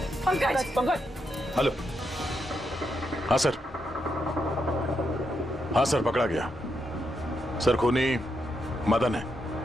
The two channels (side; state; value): both; normal; correlation 0.82